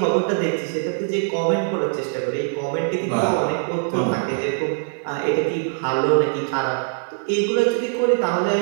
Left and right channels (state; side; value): silent; left; 61 dB below the other